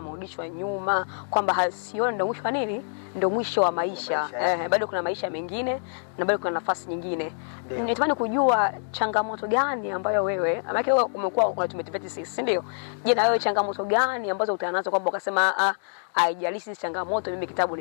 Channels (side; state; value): right; silent; digital silence